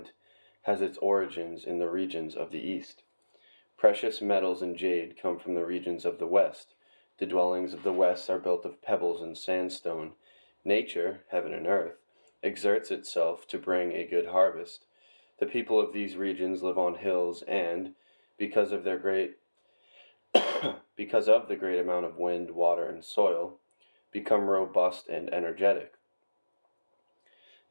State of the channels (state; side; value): inverted; both; correlation -1.00